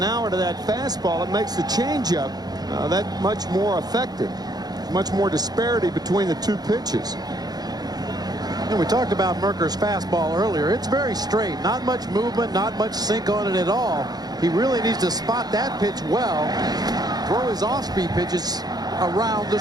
hour to that fastball, it makes the changeup that much more effective. Much more disparity between the two pitches. And we talked about Merker's fastball earlier. It's very straight. Not much movement, not much sink on it at all. He really needs to spot that pitch well. Throw his off-speed pitches around the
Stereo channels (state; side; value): late; left; 0.19 ms